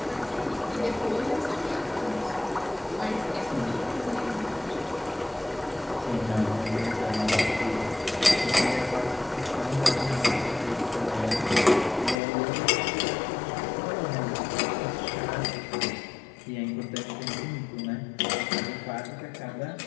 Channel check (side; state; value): right; drops out; at 12.2 s